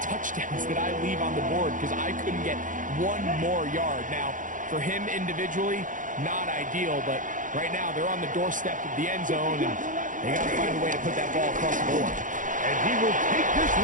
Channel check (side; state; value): left; late; 0.38 ms